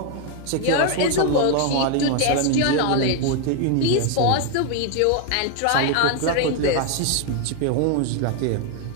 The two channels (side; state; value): both; different; correlation 0.01